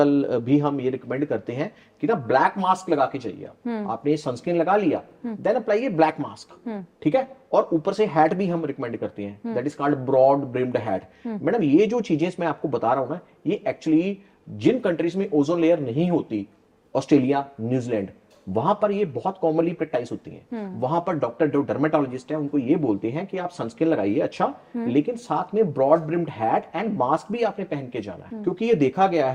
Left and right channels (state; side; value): identical; both; correlation 1.00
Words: भी हम ये रिकमेंड करते हैं कि ना ब्लैक मास्क लगा के चाहिए। आपने सनस्क्रीन लगा लिया, देन अप्लाई ब्लैक मास्क। ठीक है, और ऊपर से हैट भी हम रिकमेंड करते हैं, that is called broad brimmed hat. Madam ये जो चीजें मैं आपको बता रहा हूं ना, ये एक्चुअली जिन कंट्रीज में ओजोन लेयर नहीं होती, ऑस्ट्रेलिया, न्यूजीलैंड, वहां पर ये बहुत कॉमनली प्रैक्टिस होती है। वहां पर डॉक्टर जो डर्मेटोलॉजिस्ट है उनको ये बोलते हैं कि आप सनस्क्रीन लगाइए, अच्छा, लेकिन साथ में broad brimmed hat and mask भी आपने पहन के जाना है, क्योंकि ये देखा गया